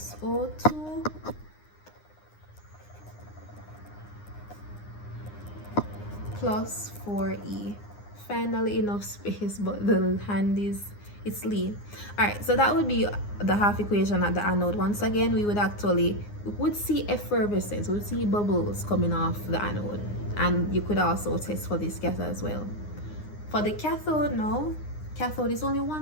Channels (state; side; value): late; right; 9.7 ms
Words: O2 plus 4E. Finally enough space, but the hand is, it's lean. All right, so that would be the half equation at the anode. Once again, we would see effervescence, we would see bubbles coming off the anode, and you could also test for this gas as well. For the cathode, no, cathode is only